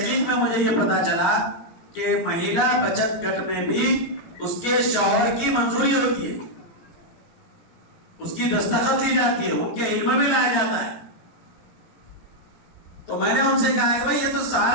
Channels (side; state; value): right; late; 17 ms